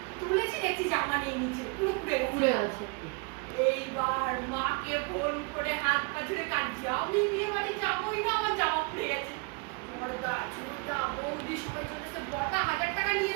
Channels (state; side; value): quieter; left; 32.1 dB